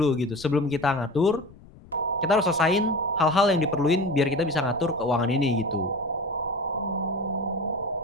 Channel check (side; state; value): left; noise; rumble, 22 dB below the sound